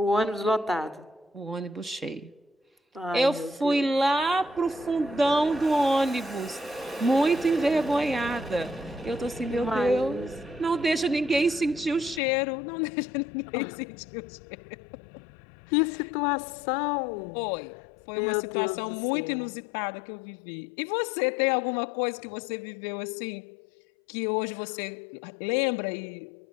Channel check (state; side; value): drops out; right; at 12.2 s